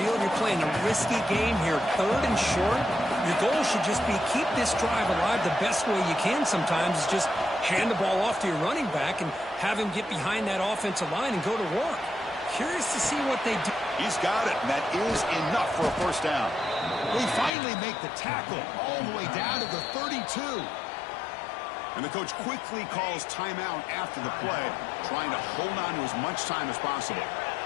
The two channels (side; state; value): right; drops out; at 17.5 s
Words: you're playing a risky game here. 3rd and short. Your goal should just be keep this drive alive the best way you can sometimes is just hand the ball off to your running back and have him get behind that offensive line and go to work. Curious to see what they do. He's got it, and that is enough for a first down. They finally make the tackle all the way down to the 32. And the coach quickly calls timeout after the play, trying to hold on to as much time as possible.